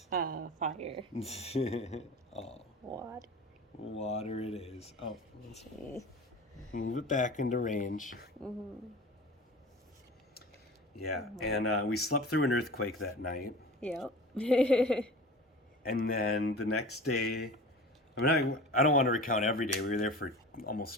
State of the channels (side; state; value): both; normal; correlation 0.37